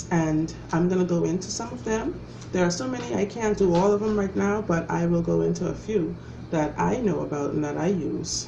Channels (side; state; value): both; identical; correlation 1.00